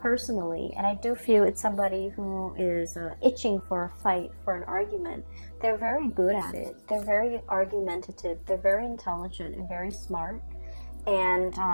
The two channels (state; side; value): inverted; both; correlation -1.00